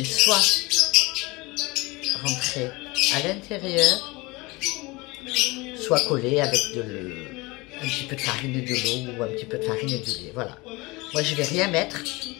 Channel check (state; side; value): quieter; right; 23.7 dB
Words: soit rentrer à l'intérieur, soit coller avec un petit peu de farine et de l'eau ou un petit peu de farine et du lait. Voilà. Moi, je vais rien mettre